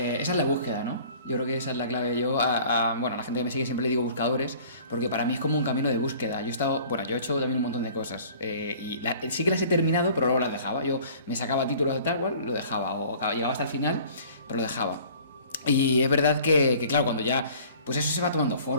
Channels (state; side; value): inverted; both; correlation -0.49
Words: es la búsqueda, ¿no? Yo creo que esa es la clave. Yo, bueno, a la gente que me sigue siempre le digo buscadores, porque para mí es como un camino de búsqueda. Yo he hecho también un montón de cosas, y sí que las he terminado, pero luego las dejaba. Yo me sacaba títulos de tal cual, lo dejaba, o llegaba hasta el final, pero lo dejaba. Y es verdad que claro, cuando ya, pues eso se va tomando